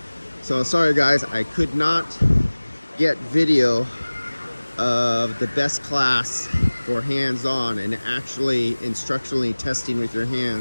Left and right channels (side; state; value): both; inverted; correlation -1.00